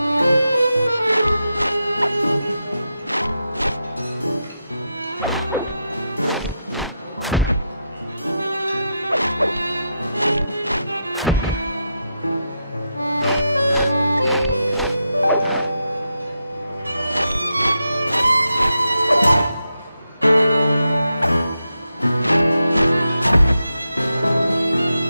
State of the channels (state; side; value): inverted; both; correlation -0.86